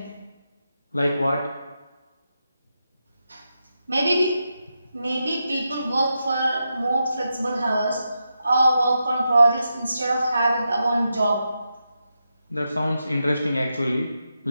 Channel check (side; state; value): both; inverted; correlation -0.87